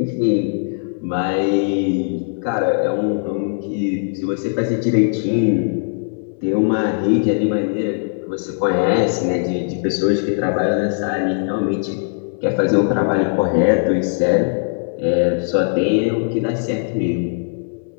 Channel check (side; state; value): right; silent; digital silence